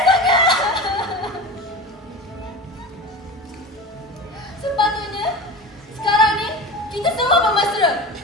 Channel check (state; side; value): normal; both; correlation 0.31